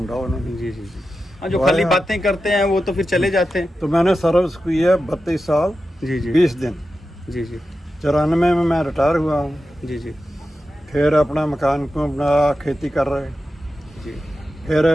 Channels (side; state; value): both; normal; correlation 0.91